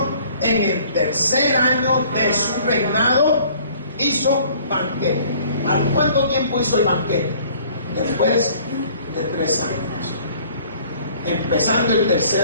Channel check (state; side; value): inverted; both; correlation -0.55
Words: en el tercer año de su reinado, hizo banquete. ¿A cuánto tiempo hizo el banquete? Después de 3 años. Empezando el tercer